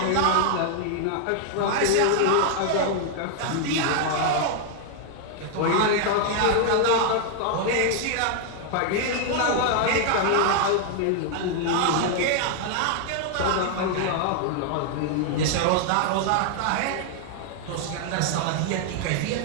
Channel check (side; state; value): both; different; correlation 0.00